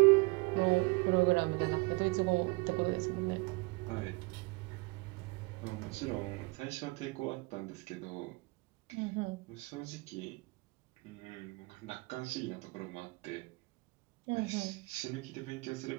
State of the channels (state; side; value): quieter; left; 27.0 dB